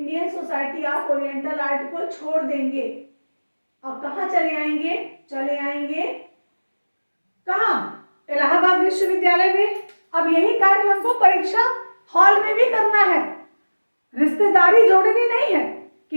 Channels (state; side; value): inverted; both; correlation -1.00